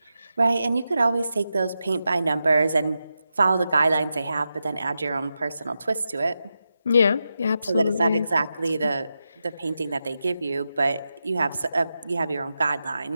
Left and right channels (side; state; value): both; inverted; correlation -0.89